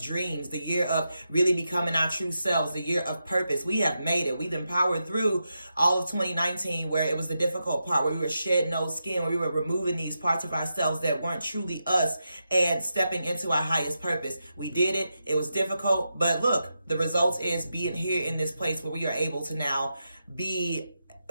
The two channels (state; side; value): inverted; both; correlation -0.87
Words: the year of really becoming our true selves, the year of purpose. We have made it. We've been powered through all of 2019, where it was the difficult part, where we were shedding old skin, where we were removing these parts of ourselves that weren't truly us and stepping into our highest purpose. We did it. It was difficult, but look, the result is being here in this place where we are able to now be